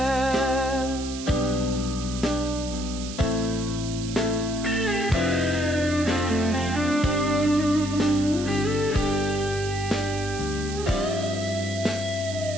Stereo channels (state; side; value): noise; right; hiss, 11 dB below the sound